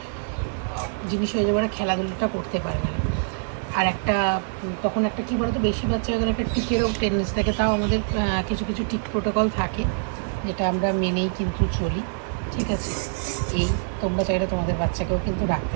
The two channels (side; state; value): left; silent; 62 dB below the other